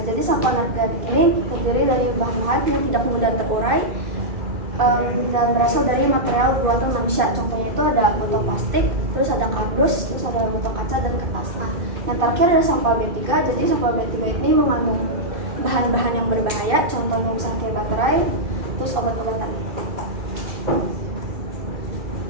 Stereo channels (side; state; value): left; late; 2.3 ms